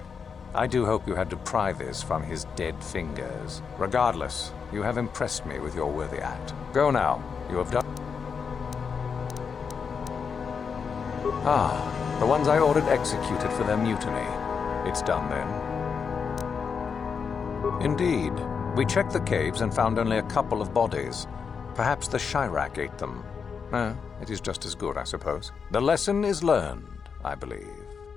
I do hope you had to pry this from his dead fingers. Regardless, you have impressed me with your worthy act. Go now. You have done... Ah, the ones I ordered executed for their mutiny. It's done then. Indeed. We checked the caves and found only a couple of bodies. Perhaps the Chirac ate them. It is just as good, I suppose. The lesson is learned, I believe.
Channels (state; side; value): quieter; right; 6.1 dB